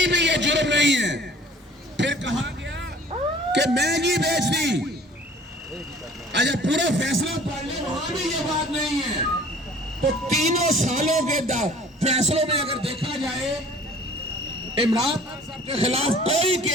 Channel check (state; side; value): normal; both; correlation 0.50